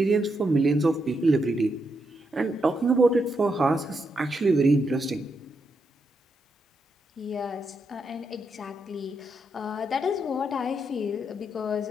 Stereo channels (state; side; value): normal; both; correlation 0.81